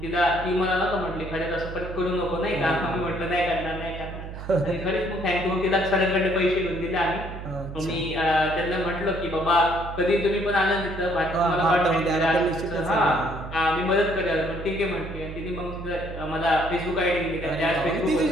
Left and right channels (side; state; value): right; noise; hum, 10 dB below the sound